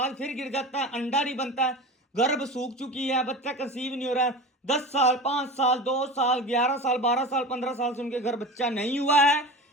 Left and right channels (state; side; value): normal; both; correlation 0.32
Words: फिर गिर जाता है, अंडा नहीं बनता है, गर्भ सूख चुकी है, बच्चा कंसीव नहीं हो रहा है, 10 साल 5 साल 2 साल 11 साल 12 साल 15 साल से उनके घर बच्चा नहीं हुआ है,